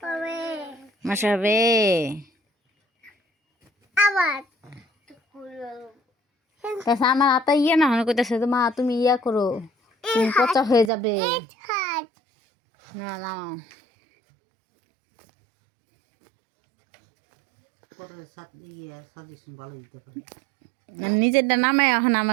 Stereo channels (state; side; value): drops out; left; at 10.9 s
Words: মশা হবে আমার হাতা ইয়ে না হয় কইতেছে তো মা তুমি ইয়া করো, তুমি পচা হয়ে যাবে। না নামাও, নিজেরটা নামায় এখন